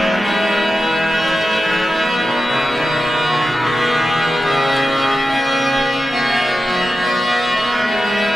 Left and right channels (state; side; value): normal; both; correlation 0.92